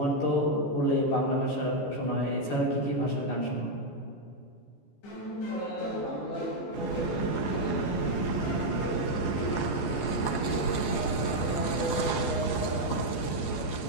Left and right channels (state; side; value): late; right; 14 ms